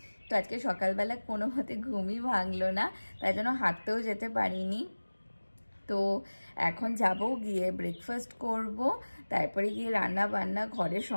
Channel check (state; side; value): inverted; both; correlation -1.00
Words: তো আজকে সকালবেলা কোনো মতে ঘুমই ভাঙলো না, তাই জন্য হাঁটতেও যেতে পারিনি। তো এখন যাব, গিয়ে ব্রেকফাস্ট করব, তারপরে গিয়ে রান্না বান্না, ঘরের